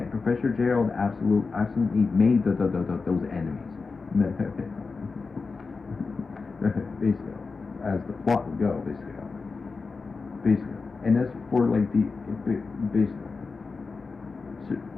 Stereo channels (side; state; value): right; quieter; 4.4 dB